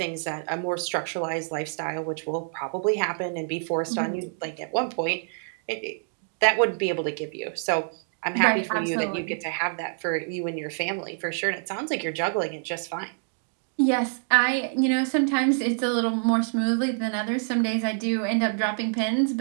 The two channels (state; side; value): silent; left; digital silence